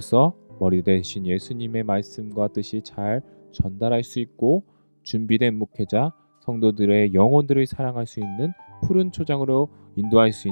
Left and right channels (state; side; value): inverted; both; correlation -1.00